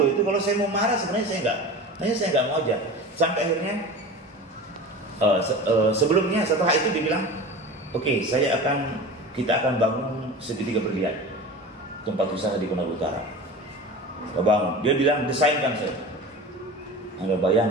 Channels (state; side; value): normal; both; correlation 0.33